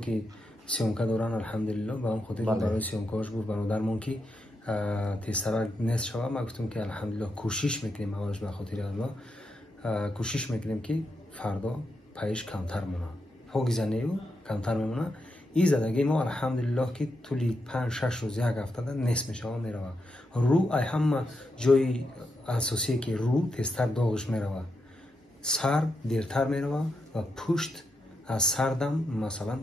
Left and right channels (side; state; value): both; normal; correlation 0.84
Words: سیامکه دارن الحمدلله با هم خودی برای سیامکهاش گفت برادرمون که تیسرا نصف شود ما گفتم که الحمدلله کوشش میکنیم اولش به خاطر الله کوشش میکنیم که فردا پیش کمتر مونه پاگیزنیو کمتر میمونه. این زدگی ما الحمدلله که طولی 5-6 روز یک هفته نصف میشه میروه. رو ای همه جای اساسی که رو تیزتر داغش میروه. سر دیرتر میروه و پشت از سردم مثلا